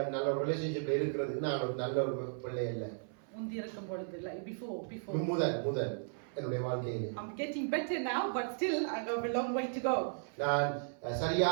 நல்ல ஒரு ரிலேஷன்ஷிப்ல இருக்கிறதுக்கு நான் ஒரு நல்ல ஒரு பிள்ளை இல்ல. முந்தி இருக்கும் பொழுது like before. முதல் என்னுடைய வாழ்க்கையிலே. I'm getting better now, but still I have a long way to go. நான்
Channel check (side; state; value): left; silent; 54 dB below the other